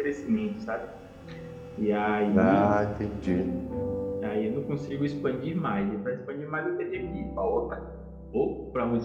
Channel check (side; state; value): both; identical; correlation 1.00